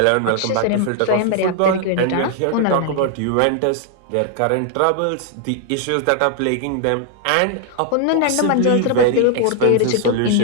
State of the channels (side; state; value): both; different; correlation 0.00